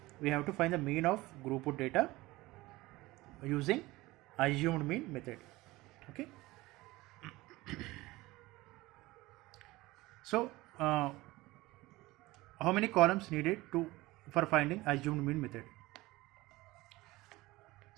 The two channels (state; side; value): quieter; left; 19.7 dB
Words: We have to find the mean of group of data using assumed mean method. Okay, so how many columns needed for finding assumed mean method?